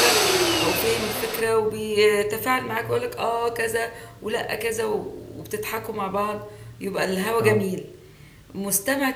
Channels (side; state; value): both; identical; correlation 1.00